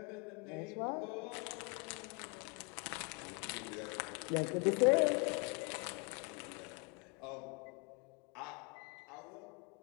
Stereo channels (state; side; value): quieter; right; 32.5 dB